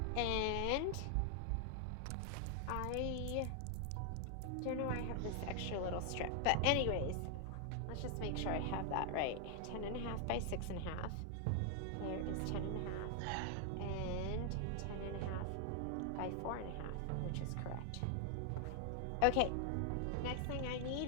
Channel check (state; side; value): different; both; correlation 0.00